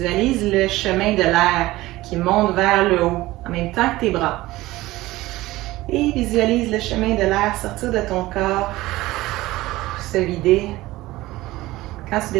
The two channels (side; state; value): left; quieter; 18.1 dB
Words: le chemin de l'air qui monte vers le haut en même temps que tes bras. Et visualise le chemin de l'air sortir de ton corps, se vider quand tu